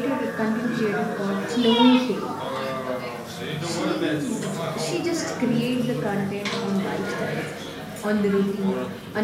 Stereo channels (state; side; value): identical; both; correlation 1.00